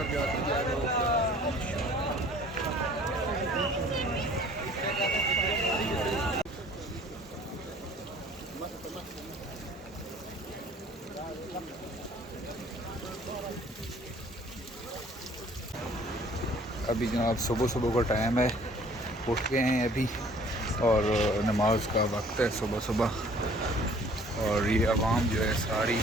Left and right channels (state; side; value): normal; both; correlation 0.53